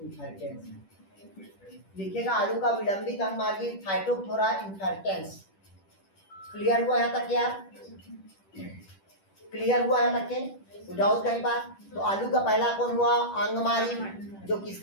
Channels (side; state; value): right; late; 10 ms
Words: लिखिएगा आलू का विलंबित अंगमार्गी फाइटोफोरा इन्फेर्टेंस। क्लियर हुआ यहाँ तक यार, क्लियर हुआ यहाँ तक के, डाउट कहीं बात। तो आलू का पहला कौन हुआ, अंगमारी, जो